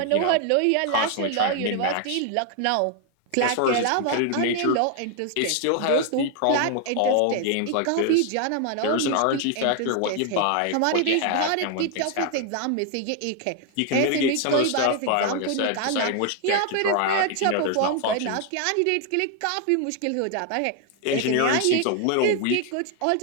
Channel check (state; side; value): different; both; correlation 0.00